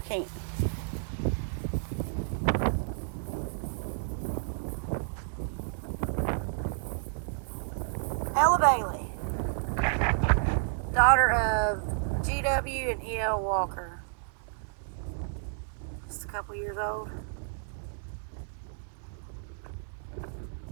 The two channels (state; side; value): silent; left; 57 dB below the other